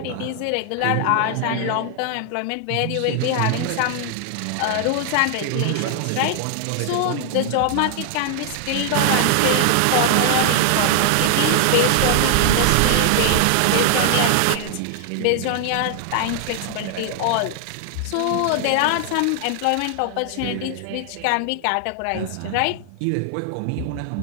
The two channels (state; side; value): different; both; correlation 0.00